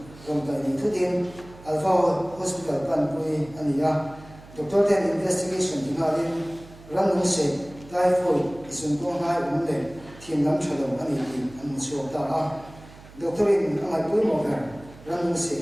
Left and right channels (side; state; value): right; noise; hum, 20 dB below the sound